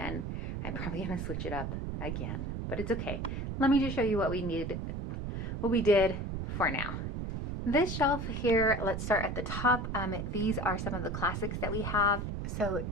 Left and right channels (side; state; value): right; noise; rumble, 3 dB below the sound